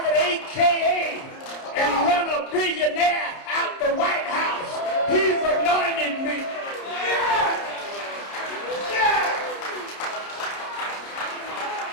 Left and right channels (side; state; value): right; late; 30 ms